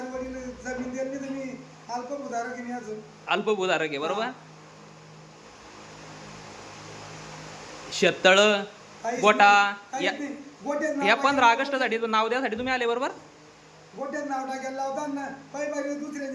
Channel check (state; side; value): identical; both; correlation 1.00